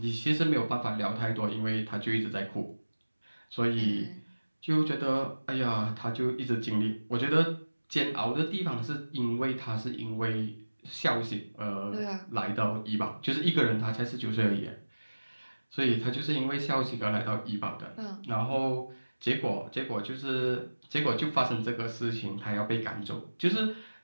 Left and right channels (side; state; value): both; inverted; correlation -1.00